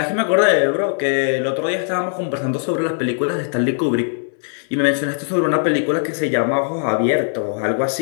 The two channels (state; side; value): silent; right; 66 dB below the other